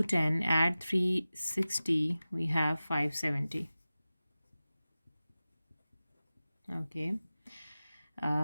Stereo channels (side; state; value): both; inverted; correlation -0.96